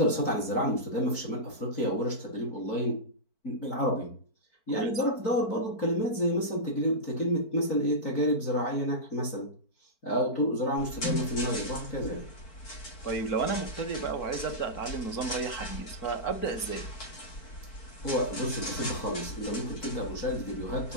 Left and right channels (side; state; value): right; late; 4.5 ms